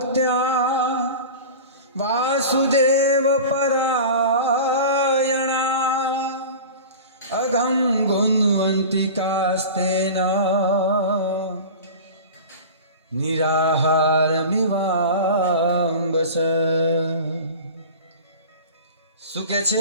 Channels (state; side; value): inverted; both; correlation -0.34